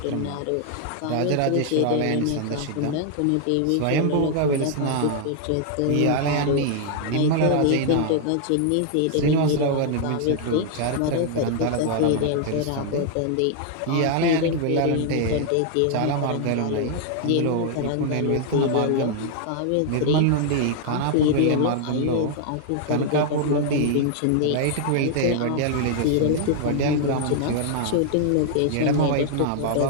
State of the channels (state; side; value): different; both; correlation 0.00